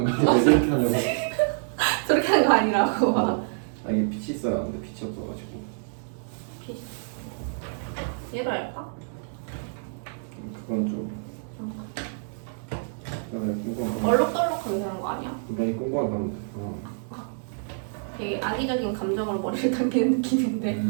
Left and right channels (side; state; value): left; silent; digital silence